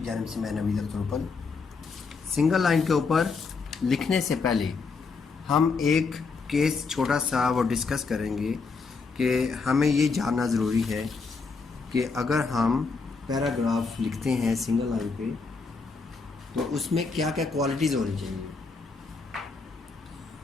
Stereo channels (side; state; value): right; quieter; 4.6 dB